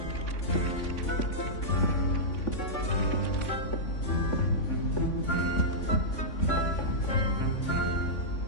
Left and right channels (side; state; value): right; late; 3.5 ms